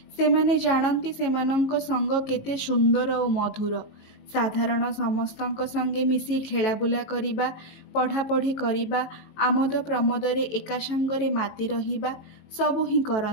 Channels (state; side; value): late; right; 18 ms